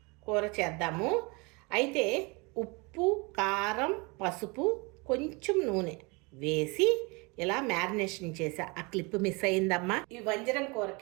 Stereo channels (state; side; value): quieter; left; 28.2 dB